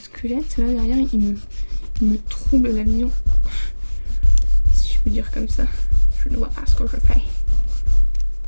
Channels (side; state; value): both; inverted; correlation -1.00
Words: là derrière il me trouble la vision. Si je peux dire comme ça. Je ne vois pas ce que je fais.